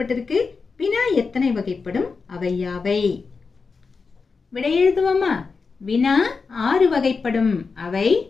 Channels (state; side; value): quieter; right; 4.7 dB